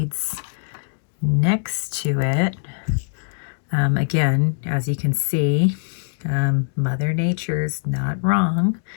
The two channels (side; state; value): right; silent; 61 dB below the other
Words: next to it, again, as you can see, Mother Nature's not wrong.